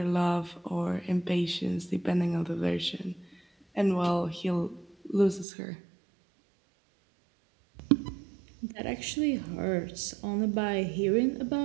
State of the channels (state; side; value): drops out; left; at 5.5 s